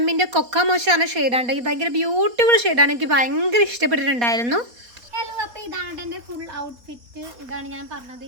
കൊക്ക മോശമാണ് ഷെയ്ഡാണ്. ഇത് ഭയങ്കര ബ്യൂട്ടിഫുൾ ഷെയ്ഡാണ്, എനിക്ക് ഭയങ്കര ഇഷ്ടപ്പെട്ടിട്ടുണ്ടായിരുന്നു. ഹലോ, അപ്പോൾ ഇതാണ് എൻ്റെ ഫുൾ ഔട്ട്ഫിറ്റ്. ഇതാണ് ഞാൻ പറഞ്ഞത്,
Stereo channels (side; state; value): left; late; 4.2 ms